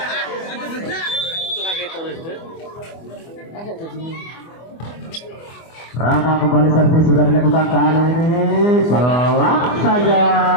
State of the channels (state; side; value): late; right; 24 ms